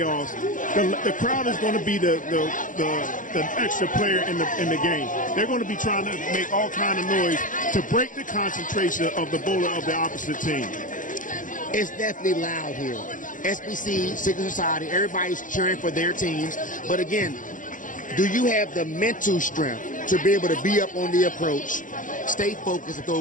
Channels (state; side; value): late; right; 0.38 ms